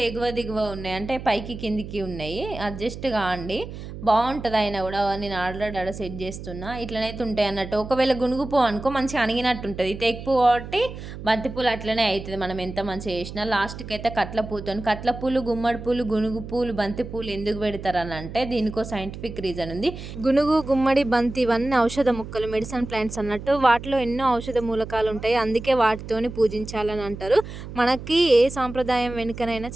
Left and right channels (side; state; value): right; noise; hum, 11 dB below the sound